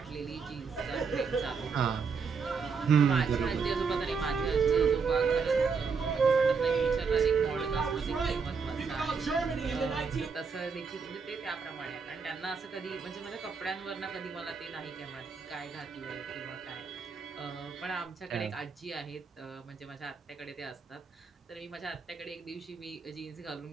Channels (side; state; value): left; quieter; 5.4 dB